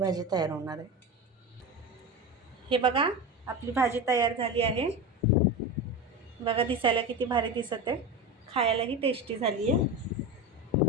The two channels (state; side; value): normal; both; correlation 0.23